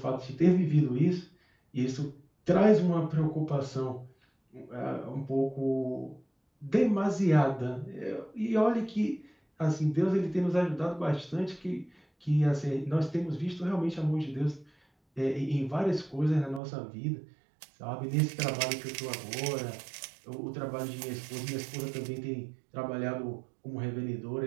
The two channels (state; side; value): drops out; left; at 16.6 s